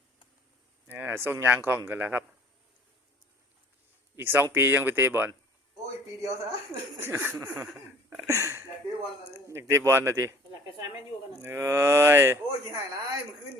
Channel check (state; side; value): normal; both; correlation 0.52